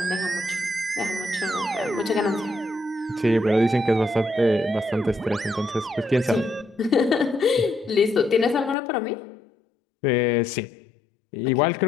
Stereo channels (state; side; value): drops out; right; at 8.8 s